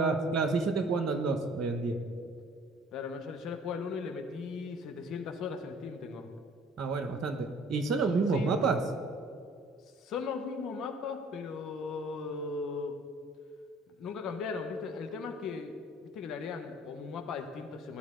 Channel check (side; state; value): both; normal; correlation 0.53